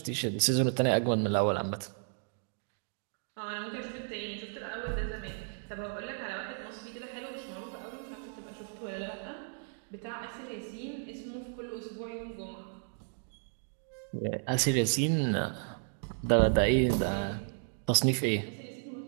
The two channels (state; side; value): silent; left; 55 dB below the other